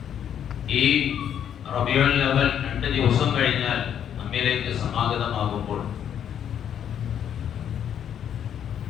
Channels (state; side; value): quieter; right; 9.3 dB